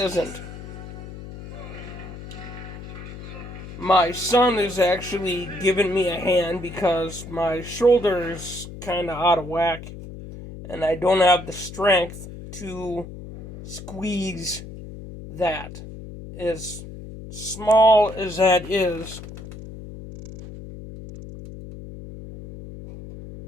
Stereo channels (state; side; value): noise; left; hum, 12 dB below the sound